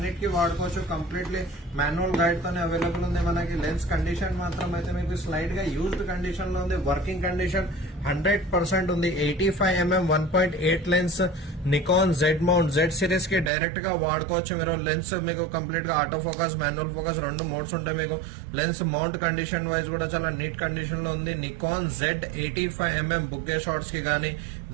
వాడుకోవచ్చు. కంప్లీట్లీ మాన్యువల్ గైడ్ తోనే అవైలబుల్ ఉంది. మనకి లెన్స్ కండిషన్ మాత్రం అయితే మీకు స్లైట్ గా యూజ్డ్ కండిషన్ లో ఉంది. వర్కింగ్ కండిషన్ 100% ఉంది. 85mm 1.8 lens Nikon Z mount Z series కి డైరెక్ట్ గా వాడుకోవచ్చు. మీరు లెన్స్ మీకు కంప్లీట్ గా ఆటో ఫోకస్, మాన్యువల్ ఫోకస్ రెండు మోడ్స్ ఉంటాయి. మీకు లెన్స్ మౌంట్ కండిషన్ వైజ్ కూడా చాలా నీట్ కండిషన్ లో ఉంది. Nikon Z 85mm bouquet shots కి గానీ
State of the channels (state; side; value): drops out; left; at 13.5 s